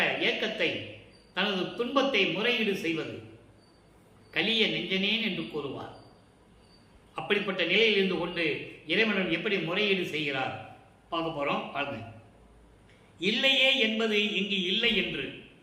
ஏக்கத்தை, தனது துன்பத்தை முறையீடு செய்வது. கலிய நெஞ்சனேன் என்று கூறுவார். அப்படிப்பட்ட நிலையில் இருந்து கொண்டு இறைவன் எப்படி முறையீடு செய்கிறார் பார்க்க போறோம். பாருங்க. இல்லையே என்பது இங்கு இல்லை என்று,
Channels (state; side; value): identical; both; correlation 1.00